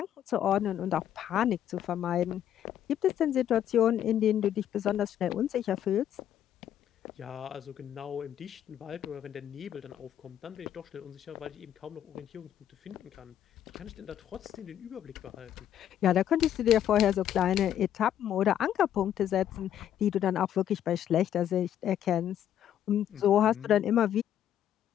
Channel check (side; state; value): right; quieter; 10.5 dB